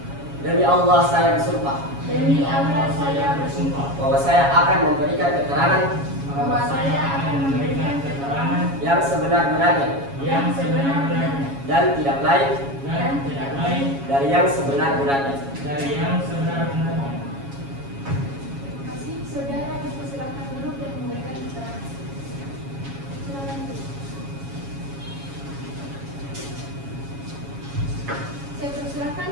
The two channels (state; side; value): late; left; 7.2 ms